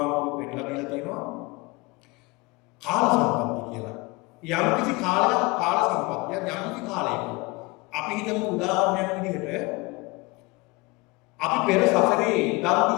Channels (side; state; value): right; quieter; 25.1 dB